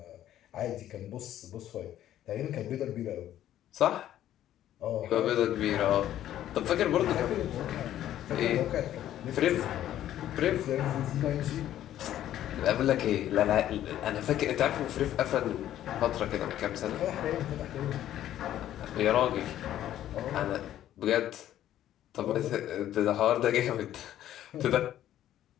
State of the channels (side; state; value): right; quieter; 12.2 dB